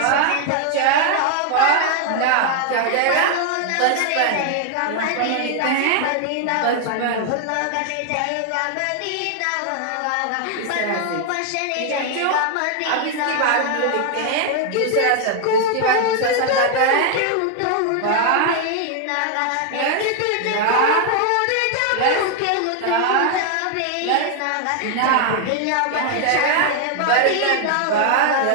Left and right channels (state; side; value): different; both; correlation 0.00